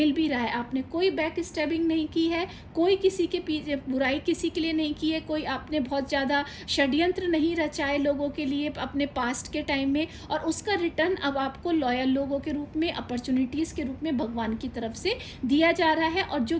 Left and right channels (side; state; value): both; identical; correlation 1.00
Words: भी रहा है। आपने कोई बैक स्टैबिंग नहीं की है, कोई किसी के पीछे बुराई किसी के लिए नहीं की है, कोई आपने बहुत ज़्यादा षड्यंत्र नहीं रचाए लोगों के लिए अपने पास्ट के टाइम में। और उसका रिटर्न अब आपको लॉयल लोगों के रूप में, अपॉर्चुनिटीज़ के रूप में भगवान की तरफ से दिया जा रहा है। और जो